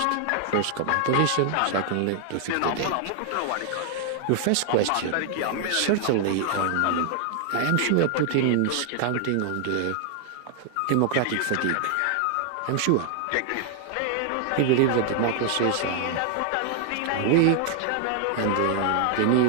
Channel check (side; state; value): both; different; correlation 0.00